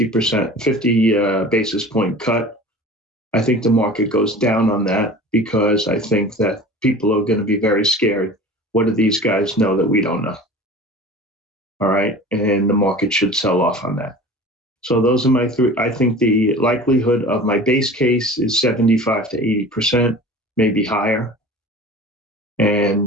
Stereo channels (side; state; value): both; normal; correlation 0.39